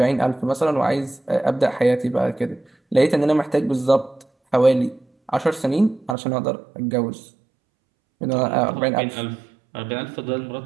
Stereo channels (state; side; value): drops out; left; at 6.2 s